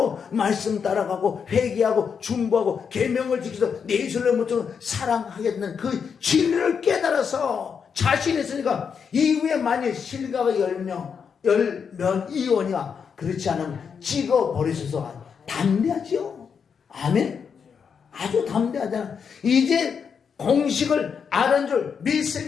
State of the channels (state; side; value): quieter; right; 6.6 dB